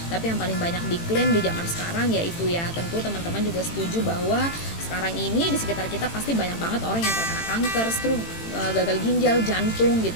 Tapi yang paling banyak diklaim di zaman sekarang yaitu ya, tentu teman-teman juga setuju bahwa sekarang ini di sekitar kita pasti banyak banget orang yang terkena kanker, stroke, gagal ginjal, jantung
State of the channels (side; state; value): right; late; 18 ms